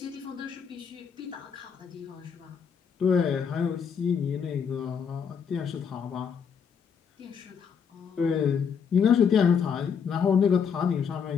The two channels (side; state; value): right; quieter; 6.8 dB